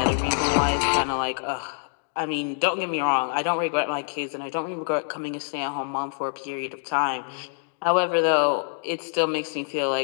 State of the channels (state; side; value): silent; right; digital silence